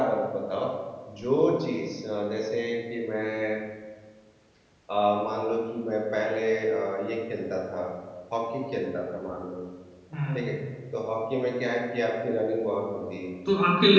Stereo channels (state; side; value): identical; both; correlation 1.00